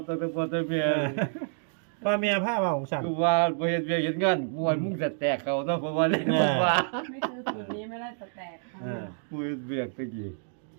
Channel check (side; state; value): left; silent; digital silence